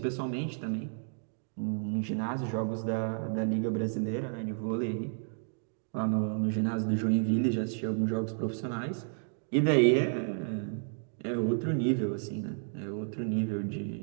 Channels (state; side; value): silent; left; digital silence